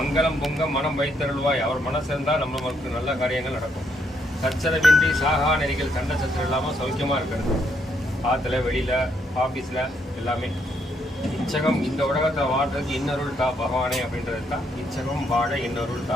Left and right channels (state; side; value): normal; both; correlation 0.74